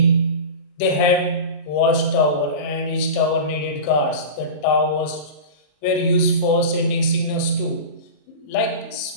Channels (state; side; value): late; right; 34 ms